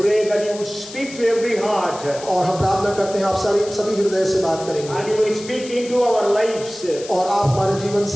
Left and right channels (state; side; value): noise; left; hiss, 15 dB below the sound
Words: that you would speak to every heart. और हम प्रार्थना करते हैं आप सभी हृदय से बात करेंगे। And you will speak into our lives. और आप हमारे जीवन